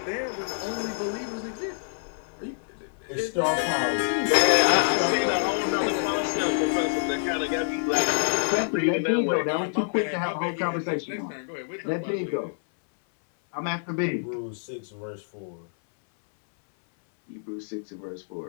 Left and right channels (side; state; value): right; silent; 60 dB below the other